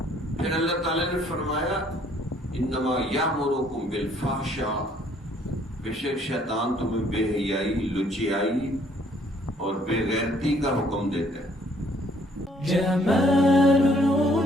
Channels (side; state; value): both; normal; correlation 0.63